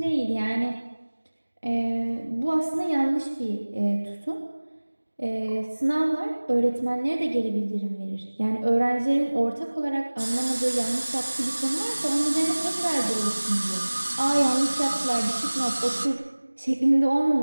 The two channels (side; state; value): both; inverted; correlation -1.00